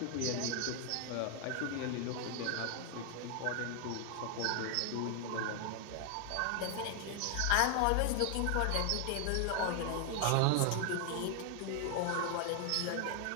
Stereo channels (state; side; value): different; both; correlation 0.00